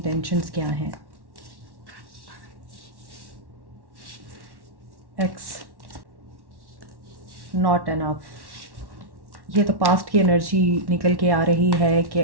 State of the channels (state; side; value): late; left; 1.1 ms